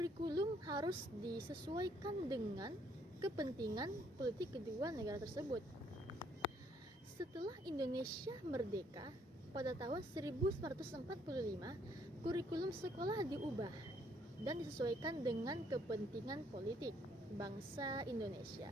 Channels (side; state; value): both; normal; correlation 0.67